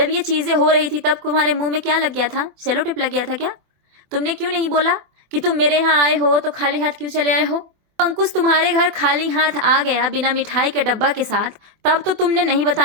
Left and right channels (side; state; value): left; late; 24 ms